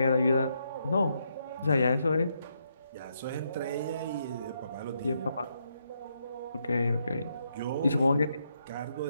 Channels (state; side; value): inverted; both; correlation -0.78